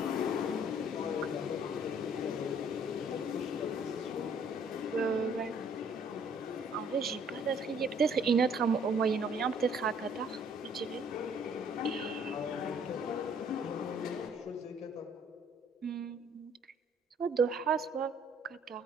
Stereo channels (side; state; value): both; normal; correlation 0.60